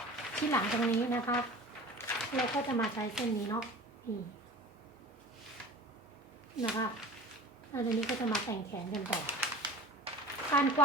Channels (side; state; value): both; normal; correlation 0.39